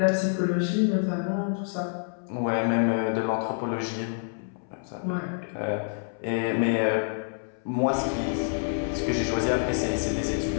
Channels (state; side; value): silent; right; 60 dB below the other